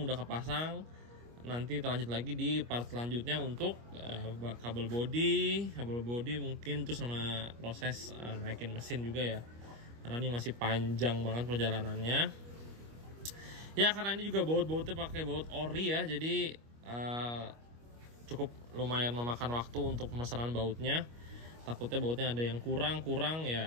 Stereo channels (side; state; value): left; late; 25 ms